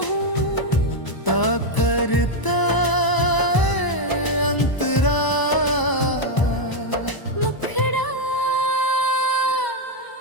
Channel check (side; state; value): right; late; 1.0 ms